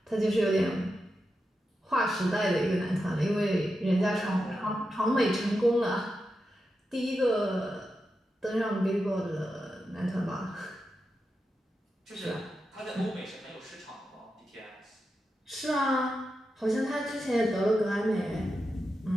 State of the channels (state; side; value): normal; both; correlation 0.89